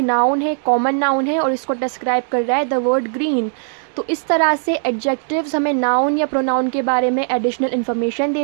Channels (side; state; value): left; silent; digital silence